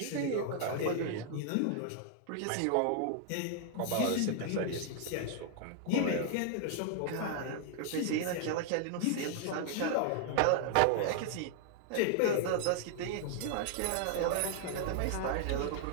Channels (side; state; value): both; different; correlation 0.00